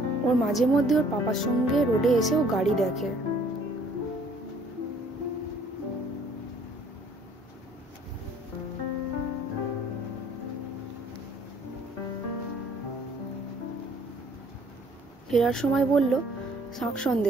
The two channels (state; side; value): normal; both; correlation 0.58